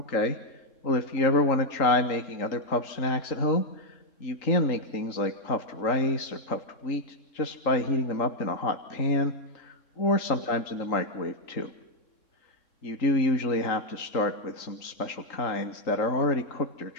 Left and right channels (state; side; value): late; right; 3.8 ms